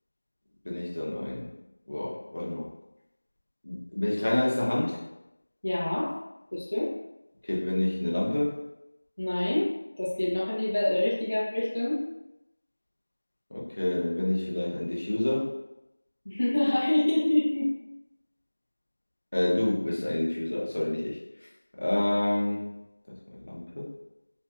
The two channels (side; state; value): both; inverted; correlation -1.00